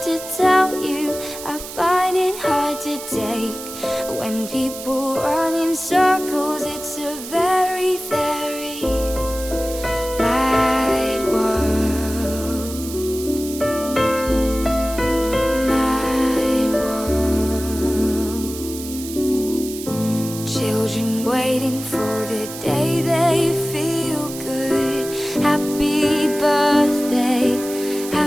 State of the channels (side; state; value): right; noise; hiss, 11 dB below the sound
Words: to tell you, I find it hard to take. When people run in circles, it's a very, very mad world. Mad world. Children waiting for the day they feel good. Happy birthday,